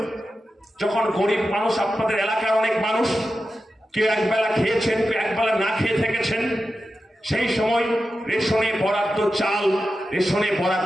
যখন গরিব মানুষ, আপনাদের এলাকার অনেক মানুষ, কেউ একবেলা খেয়েছেন, কেউ একবেলা না খেয়ে থেকেছেন, সেই সময় রেশনে বরাদ্দ চাল, রেশনে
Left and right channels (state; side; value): normal; both; correlation 0.91